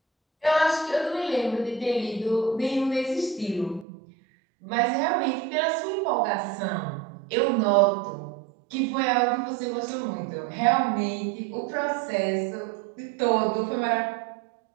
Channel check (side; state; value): left; drops out; at 3.9 s